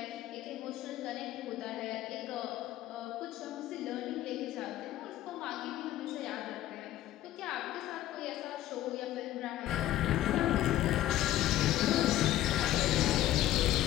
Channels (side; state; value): right; quieter; 13.9 dB